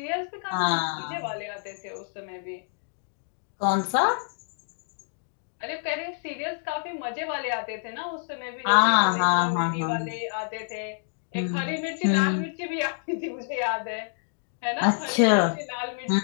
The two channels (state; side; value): silent; right; digital silence